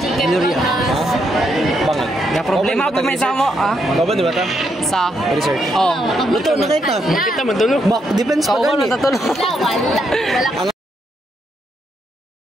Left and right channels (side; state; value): both; normal; correlation 0.78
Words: Ga problema pag may samo, ah? Baban, di ba ta? Sa? Research. Oh. Luto na kita. Kita man tulog. Back defense pa Kau gani. natatulog. Wala.